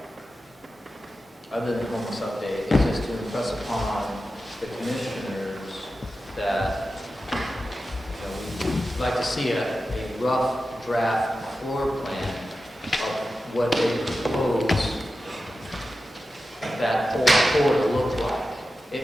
other than the homeless update, is just to impress upon the commissioners that we'd like to see a rough draft floor plan of what they propose that whole floor to look like.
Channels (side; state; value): both; normal; correlation 0.92